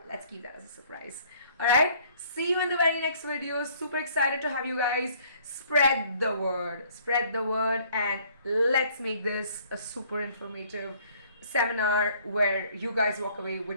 let's keep that as a surprise. All right. See you in the very next video. Super excited to have you guys. Spread the word. Spread the word, and let's make this a super informative seminar where you guys walk away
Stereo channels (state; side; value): inverted; both; correlation -0.59